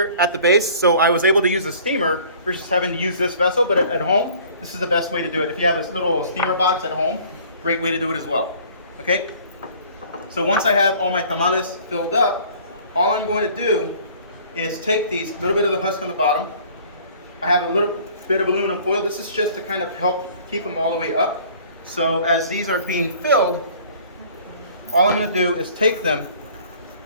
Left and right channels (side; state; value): both; inverted; correlation -0.52